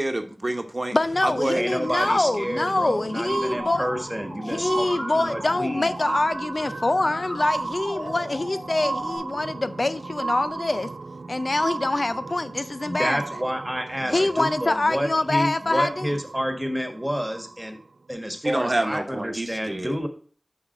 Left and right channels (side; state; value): both; normal; correlation 0.98